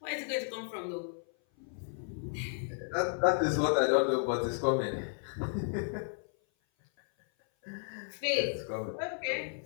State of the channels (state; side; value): silent; right; 55 dB below the other